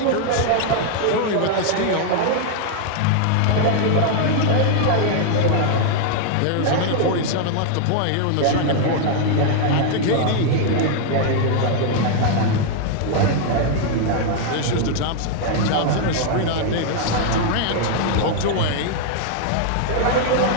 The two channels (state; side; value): different; both; correlation 0.00